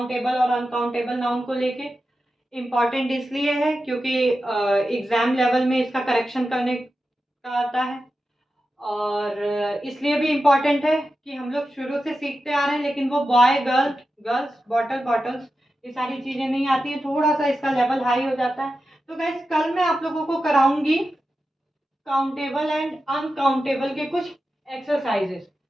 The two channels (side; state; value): both; normal; correlation 0.91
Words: और अनकाउंटेबल नाउन को लेके। इम्पॉर्टेंट इसलिए है क्योंकि एग्जाम लेवल में इसका करेक्शन करने का आता है, और इसलिए भी इम्पॉर्टेंट है कि हम लोग शुरू से सीखते आ रहे हैं, लेकिन वो boy girl, girls bottle bottles, ये सारी चीजें नहीं आती हैं, थोड़ा सा इसका लेवल हाई हो जाता है। तो गाइस कल मैं आप लोगों को कराऊंगी काउंटेबल एंड अनकाउंटेबल के कुछ एक्सरसाइजेस,